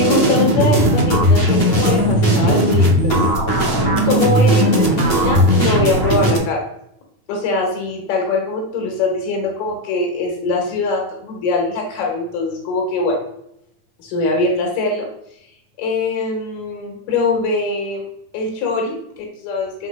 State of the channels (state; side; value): late; right; 9.0 ms